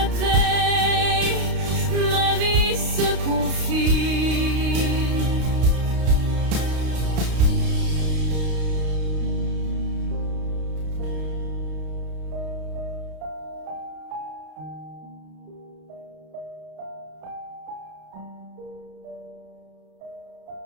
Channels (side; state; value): left; late; 32 ms